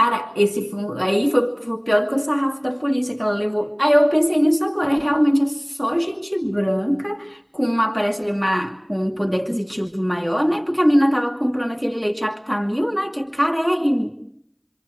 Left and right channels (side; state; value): both; identical; correlation 1.00